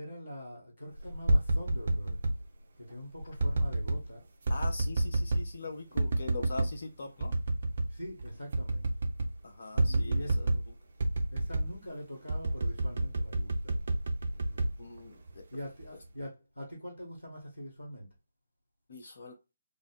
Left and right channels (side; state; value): both; inverted; correlation -0.94